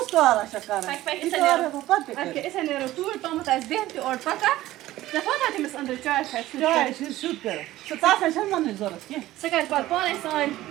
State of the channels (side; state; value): left; quieter; 15.8 dB